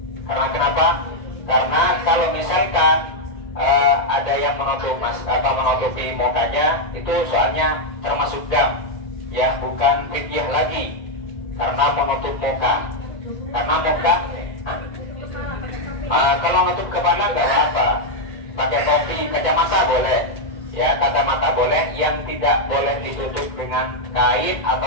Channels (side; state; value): right; late; 2.0 ms